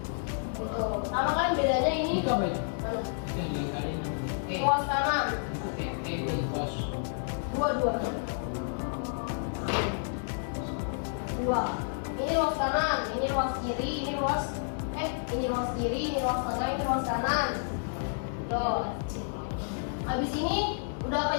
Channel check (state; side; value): silent; right; digital silence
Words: Gitu. Sama kan bedanya ini? Itu apa itu? Mana? Yang dikaliin Ruas kanan. itu cos. 2. Ini ruas kanan, ini ruas kiri, ini ruas kiri, ini ruas tengah, ini ruas kanan. Tuh. Habis ini udah apa